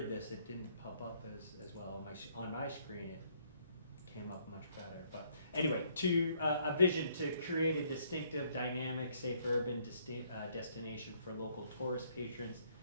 this, it didn't pop up as well on my screen. came up much better. But anyway, a vision to create a distinctive, dynamic, safe urban destination for local tourist patrons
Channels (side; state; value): both; inverted; correlation -0.67